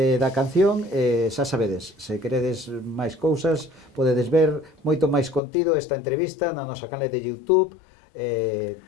da canción e xa sabedes, se queredes máis cousas, podedes ver moito máis contido esta entrevista na nosa canal de YouTube.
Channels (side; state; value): right; drops out; at 5.4 s